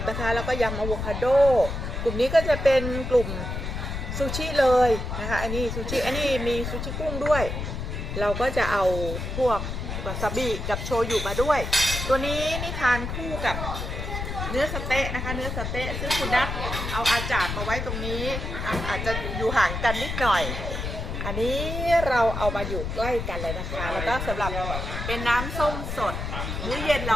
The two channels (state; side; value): noise; left; rumble, 4 dB below the sound